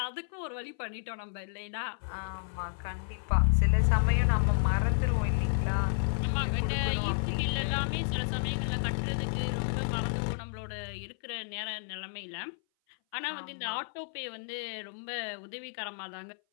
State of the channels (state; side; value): silent; right; 57 dB below the other